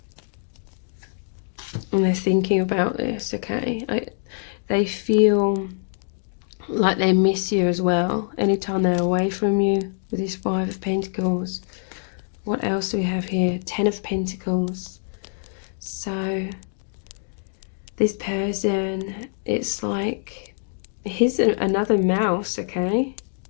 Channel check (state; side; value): silent; right; digital silence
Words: And they're thinking about this, okay? They feel like they miss you as well anytime they're away from you with this 5 of Pentacles. What else do we have here? 10 of Pentacles. So this person, it's like, here's another mouse, okay?